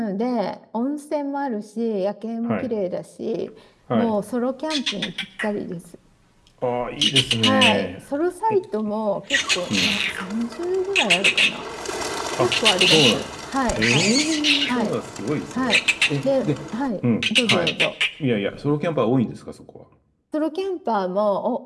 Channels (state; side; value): identical; both; correlation 1.00